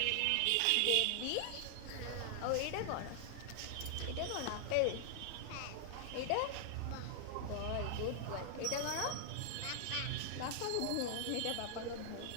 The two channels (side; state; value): both; different; correlation 0.00